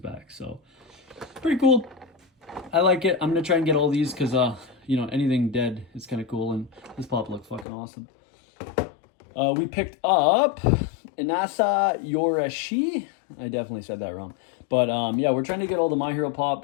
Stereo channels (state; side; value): drops out; right; at 7.7 s